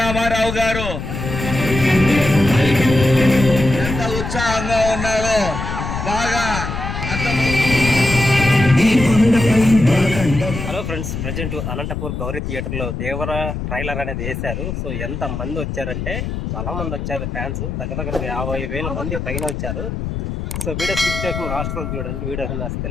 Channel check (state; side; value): noise; left; rumble, 5 dB below the sound